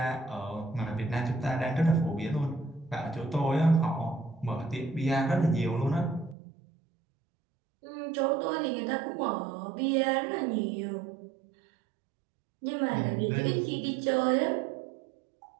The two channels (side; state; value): left; drops out; at 6.4 s